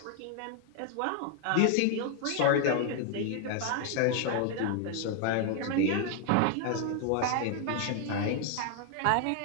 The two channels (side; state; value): both; different; correlation 0.00